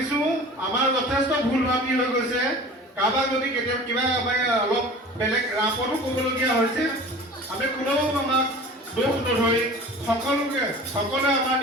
আমাৰ যথেষ্ট ভুল ভ্ৰান্তি হৈ গৈছে। কাৰোবাক যদি কেতিয়াবা কিবা অলপ বেলেগ ৰাপতো ক'বলগীয়া হৈছে আমি কোনেও আমাক দোষ নধৰি সকলোৱে আমাৰ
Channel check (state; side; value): normal; both; correlation 0.41